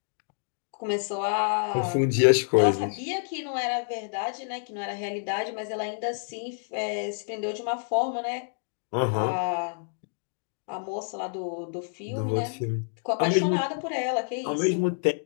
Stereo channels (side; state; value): right; silent; digital silence